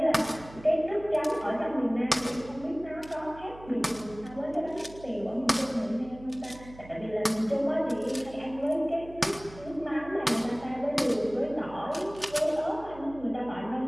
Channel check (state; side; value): noise; right; hum, 18 dB below the sound